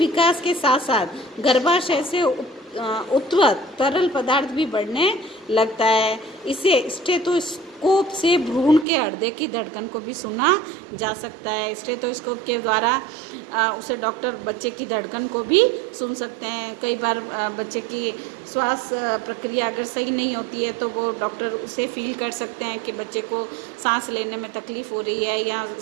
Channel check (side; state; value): left; drops out; at 8.8 s